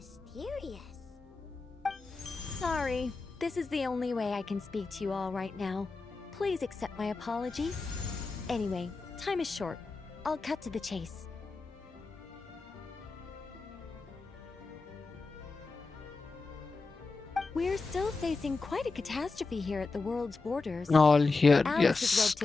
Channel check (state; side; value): quieter; right; 3.9 dB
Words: Sorry, this is the only way I can speak to you all right now. Please accept my apology. Anyway, time is short. I'll cut to the chase. We're still facing quite a catastrophe here at the world's borders. All here, Alice has yes, roped